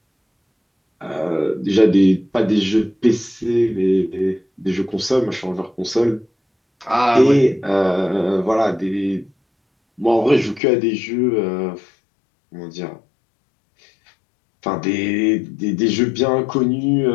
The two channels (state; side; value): drops out; right; at 10.6 s